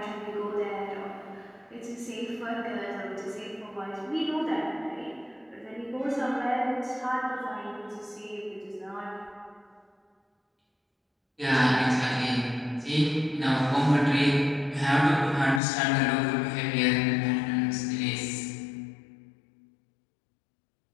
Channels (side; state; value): right; drops out; at 15.6 s